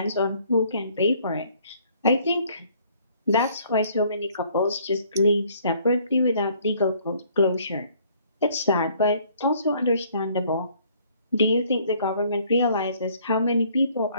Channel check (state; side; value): inverted; both; correlation -0.61